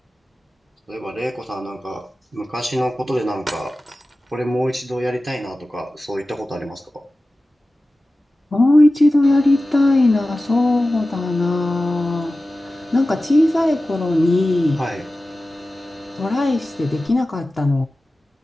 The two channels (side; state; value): both; normal; correlation 0.95